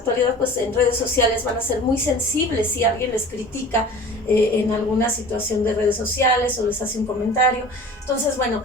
pues en redes sociales van a ser muy sensibles si alguien les critica en alguna situación de redes sociales o les hace un comentario. Entonces, bueno,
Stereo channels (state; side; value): normal; both; correlation 0.41